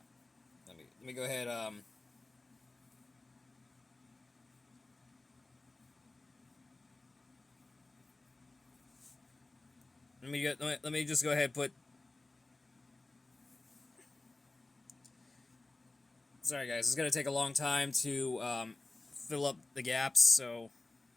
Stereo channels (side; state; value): right; quieter; 3.1 dB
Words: let me go ahead. Let me just go ahead and put. Sorry guys, it's gonna take a long time to fill up the gaps, so.